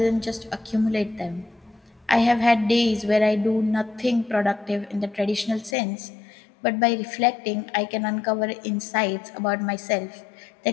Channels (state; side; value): drops out; right; at 5.8 s